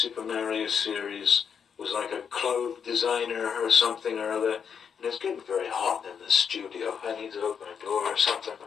Mario series was like a clothes designer or something or other, and it's getting very hot in the studio. I need to open a door or something.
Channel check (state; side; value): quieter; right; 7.1 dB